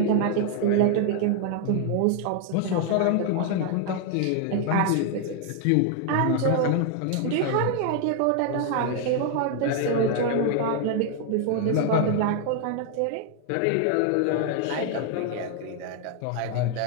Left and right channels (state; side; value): different; both; correlation 0.00